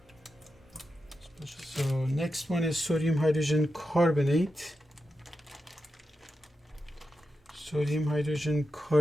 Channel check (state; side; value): normal; both; correlation 0.89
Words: So next one is sodium hydrogen carbonate. Sodium hydrogen